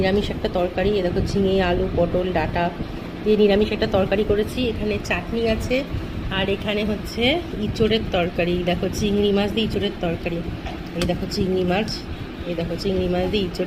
একটা তরকারি। এ দেখো ঝিঙে আলু পটল ডাঁটা দিয়ে নিরামিষ একটা তরকারি করেছি। এখানে চাটনি আছে আর এখানে হচ্ছে ইঁচড়ের তরকারি। দেখো চিংড়ি মাছ দিয়ে ইঁচড়ের তরকারি। এই দেখো চিংড়ি মাছ, এই দেখো চিংড়ি মাছ দিয়ে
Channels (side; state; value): both; identical; correlation 1.00